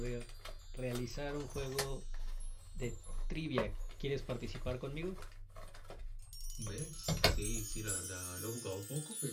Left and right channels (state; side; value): identical; both; correlation 1.00